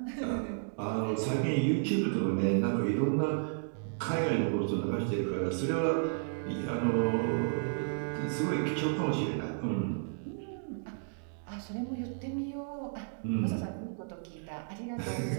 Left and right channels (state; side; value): silent; left; digital silence